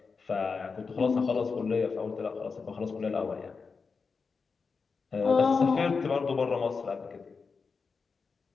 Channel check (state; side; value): quieter; right; 4.9 dB